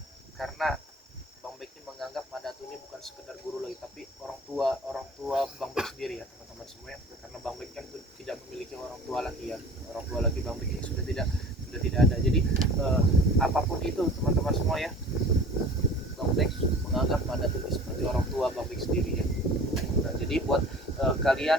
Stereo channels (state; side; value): normal; both; correlation 0.44